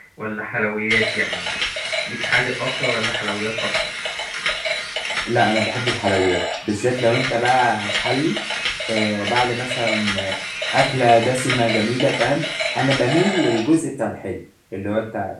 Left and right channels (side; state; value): both; identical; correlation 1.00